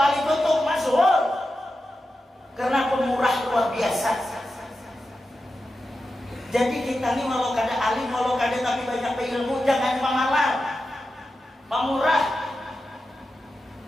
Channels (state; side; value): normal; both; correlation 0.91